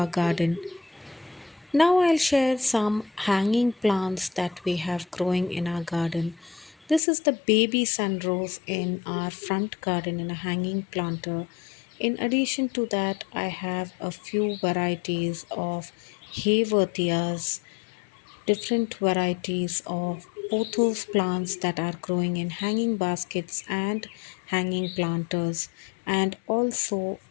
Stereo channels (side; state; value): right; drops out; at 7.0 s